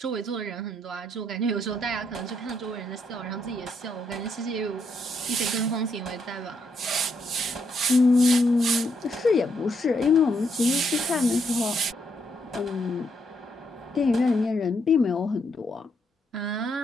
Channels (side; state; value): both; normal; correlation 0.76